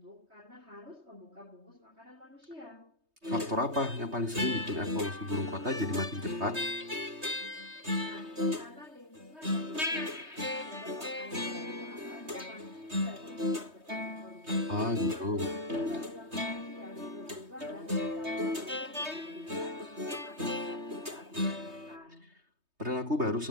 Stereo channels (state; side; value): late; left; 3.2 ms